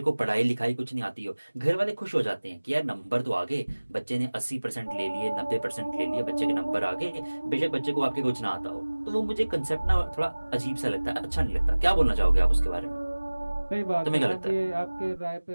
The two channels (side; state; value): both; inverted; correlation -1.00